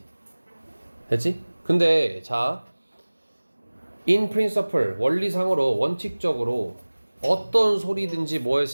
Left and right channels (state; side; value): inverted; both; correlation -1.00